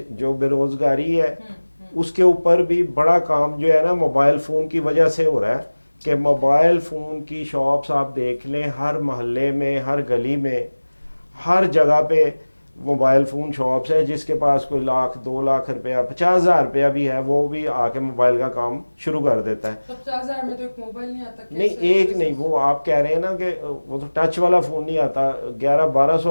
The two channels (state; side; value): inverted; both; correlation -1.00